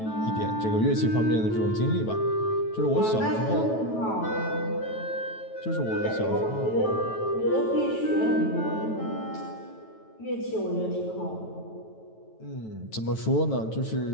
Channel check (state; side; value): late; right; 9.2 ms